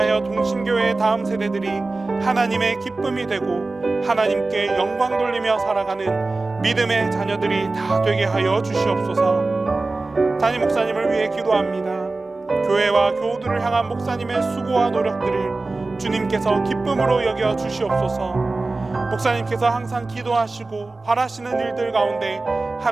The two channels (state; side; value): quieter; left; 3.4 dB